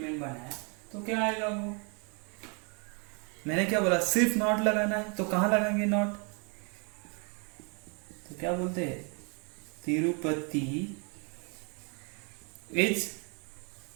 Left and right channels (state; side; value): quieter; left; 35.7 dB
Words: बनाया तो क्या आएगा, वो मैंने क्या बोला, सिर्फ नॉट लगाना है, तो कहाँ लगाएंगे नॉट, तो क्या बोलते हैं, तिरुपति इज,